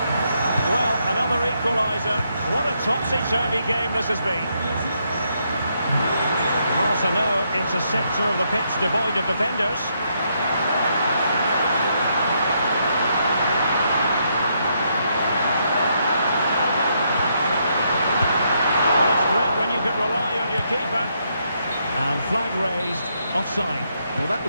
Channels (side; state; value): both; inverted; correlation -0.76